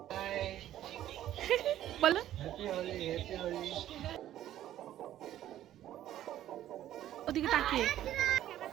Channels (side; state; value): left; quieter; 12.5 dB